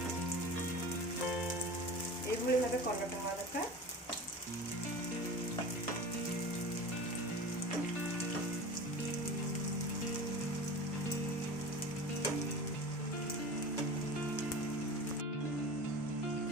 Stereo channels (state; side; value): normal; both; correlation 0.34